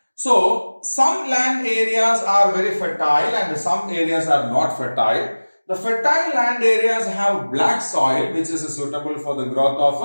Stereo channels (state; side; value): inverted; both; correlation -1.00